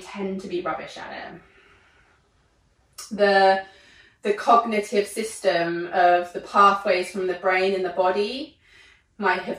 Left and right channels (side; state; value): both; identical; correlation 1.00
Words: tend to be rubbish at it. The cognitive system of the pathways from the brain and the body might